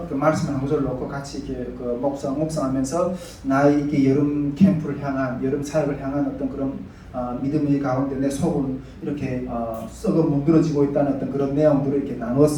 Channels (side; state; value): both; identical; correlation 1.00